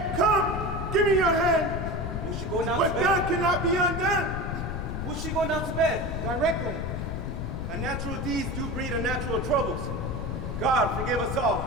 Come, give me your hand. Will she go down What's to bed? done cannot be undone. Will she go down to bed? Directly. Unnatural deeds do breed unnatural troubles. God forgive us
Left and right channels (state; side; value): noise; left; rumble, 5 dB below the sound